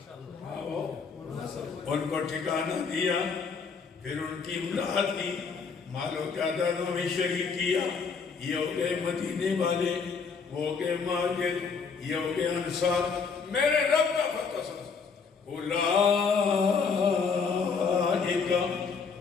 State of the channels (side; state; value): right; quieter; 5.4 dB